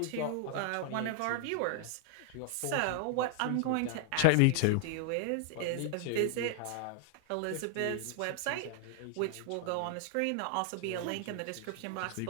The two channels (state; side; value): different; both; correlation 0.00